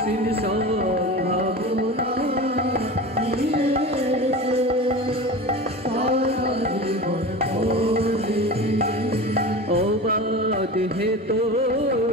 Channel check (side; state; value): both; normal; correlation 0.31